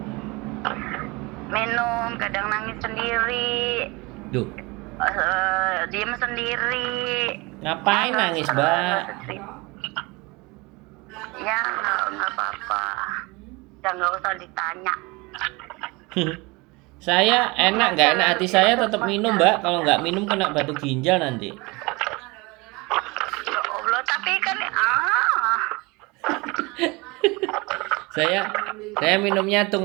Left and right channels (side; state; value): left; quieter; 25.2 dB